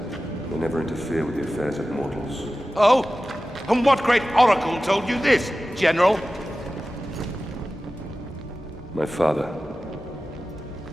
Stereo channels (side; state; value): both; normal; correlation 0.95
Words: They never interfere with the affairs of mortals. Oh? And what great oracle told you this, General? My father.